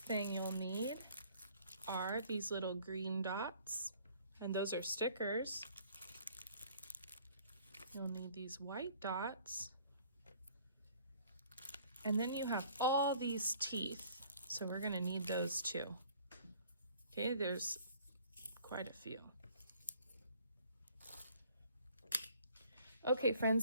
you'll need are these little green dots, and those are stickers. You'll need these white dots, and then you have all these teeth, so we're going to need those too. Okay, there's quite a few. Okay,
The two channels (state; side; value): inverted; both; correlation -0.56